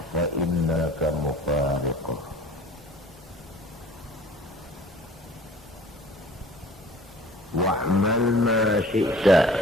fa innaka mufariquh." Wa'mal ma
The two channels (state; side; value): normal; both; correlation 0.47